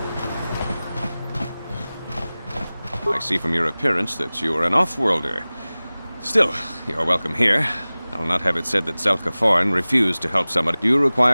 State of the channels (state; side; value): inverted; both; correlation -0.98